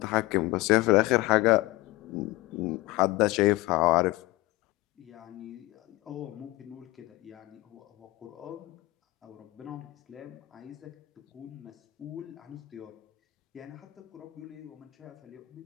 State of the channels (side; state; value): right; quieter; 20.1 dB